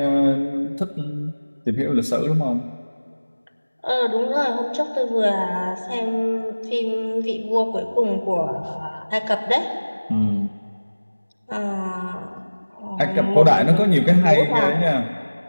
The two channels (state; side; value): inverted; both; correlation -1.00